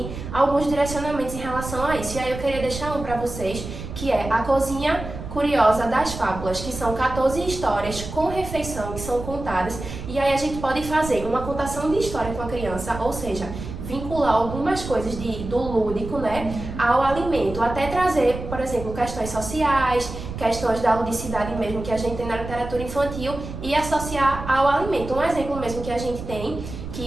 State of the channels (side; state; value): right; noise; rumble, 9 dB below the sound